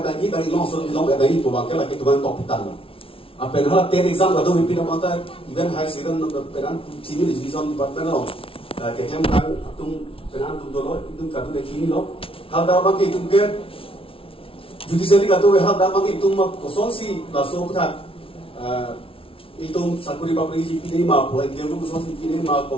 ni dari long sun long ada ni tu bangke lagi tu bang top pitan. Apa yang hal 10 exam kadu hipi nama ta even high second peran sini division department lo. Kehem kan tung peran tung dulu itu kadu de kini lo. Hal dah bang ke itu ke judiciary katu hal dah bang itu mak kosong si langsung tak itu sakuri papri ji pinai ma po dia pun kosong si pinai ma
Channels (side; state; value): right; late; 0.26 ms